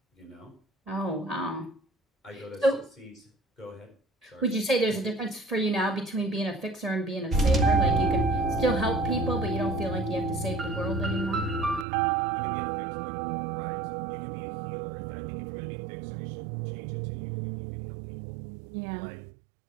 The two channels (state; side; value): drops out; left; at 11.9 s